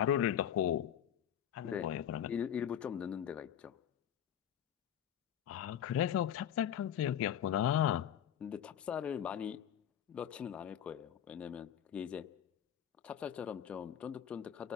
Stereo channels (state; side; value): quieter; right; 9.8 dB